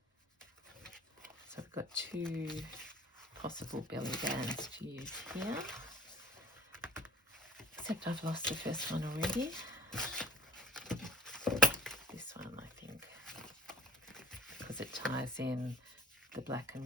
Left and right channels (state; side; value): normal; both; correlation 0.50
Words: So I've got two possible belly bands to use here, except I've lost the first one already. This one, I think, because it ties in the black